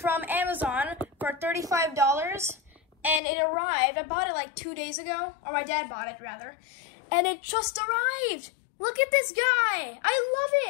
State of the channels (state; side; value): drops out; right; at 3.2 s